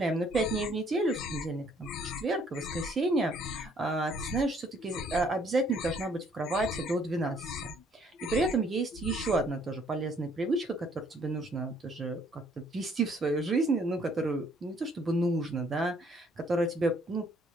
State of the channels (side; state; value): both; normal; correlation 0.63